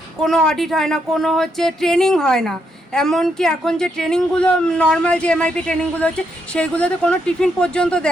কোনো অডিট হয় না, কোনো হচ্ছে ট্রেনিং হয় না। এমনকি এখন যে ট্রেনিংগুলো নর্মাল যে MIP ট্রেনিংগুলো হচ্ছে সেইগুলোতে কোনো টিফিন পর্যন্ত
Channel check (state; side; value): normal; both; correlation 0.78